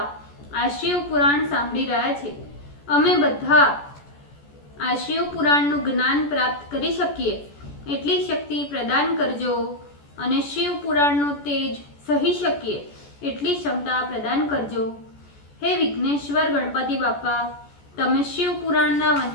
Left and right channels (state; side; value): late; right; 14 ms